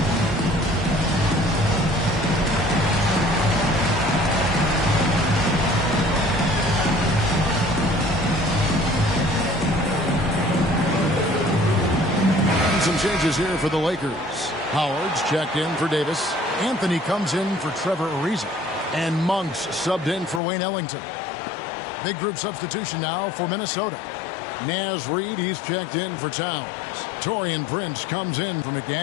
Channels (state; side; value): drops out; right; at 20.4 s